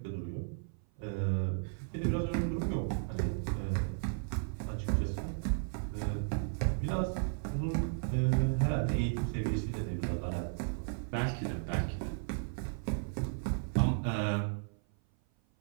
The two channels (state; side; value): silent; left; 55 dB below the other